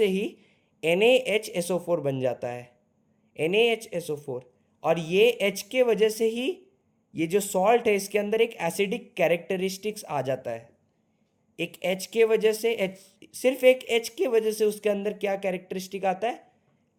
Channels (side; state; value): both; identical; correlation 1.00